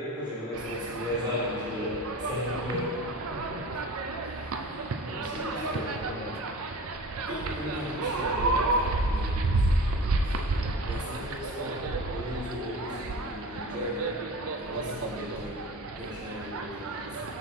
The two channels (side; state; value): both; normal; correlation 0.35